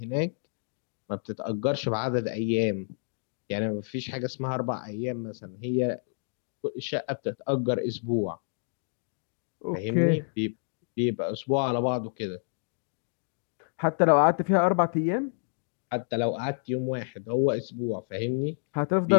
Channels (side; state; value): right; silent; digital silence